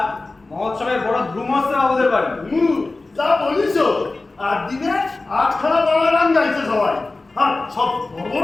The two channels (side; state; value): right; quieter; 3.3 dB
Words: মহোৎসবের বড় ধুম হচ্ছে বাবুদের বাড়ি। যা বলিস, আর দিনে 8খানা বাংলা গান গাইছে সবাই, আর সব বড়